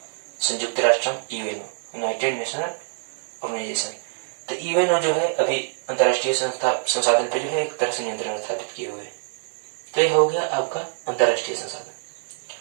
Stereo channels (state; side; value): silent; left; 62 dB below the other